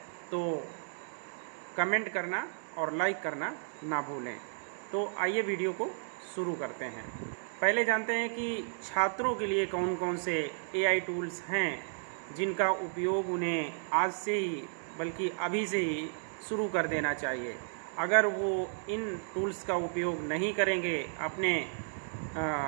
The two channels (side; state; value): left; silent; digital silence